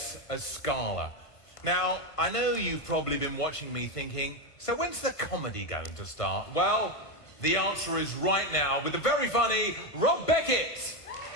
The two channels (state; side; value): late; right; 1.4 ms